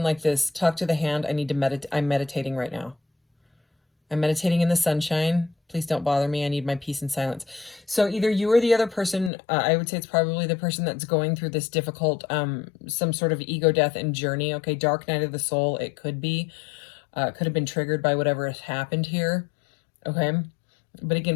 like this, talk to the hand. I need to meditate. I'm meditating right now. I'm meditating in the sunshine. Please don't bother me. I need my peace and silence. So either you or the other person, I would say it's probably the person that's going through this difficult, some sort of ego death and journey. Okay, dark night of the soul, it could be. Could have been triggered by whatever has happened here. Okay, but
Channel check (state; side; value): drops out; right; at 9.3 s